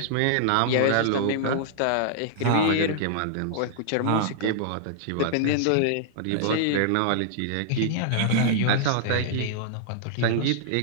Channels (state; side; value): different; both; correlation -0.01